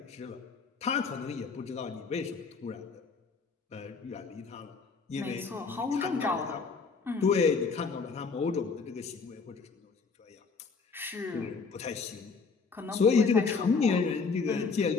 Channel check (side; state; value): right; quieter; 4.8 dB